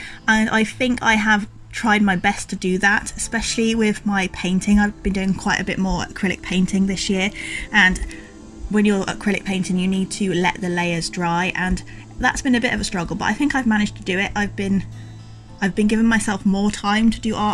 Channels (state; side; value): identical; both; correlation 1.00